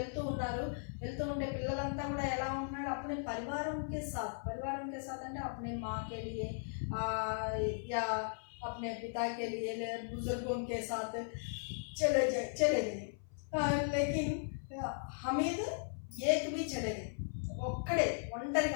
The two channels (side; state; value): right; silent; 53 dB below the other